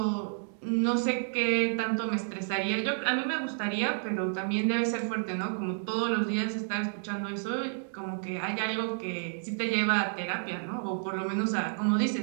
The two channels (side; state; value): left; silent; digital silence